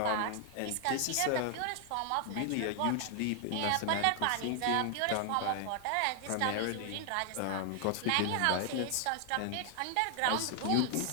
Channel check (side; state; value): both; different; correlation 0.00